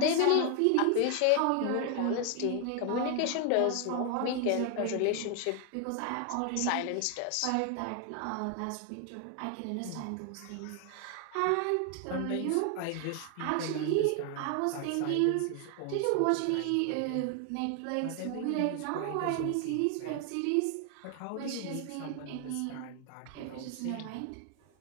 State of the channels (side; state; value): both; different; correlation 0.00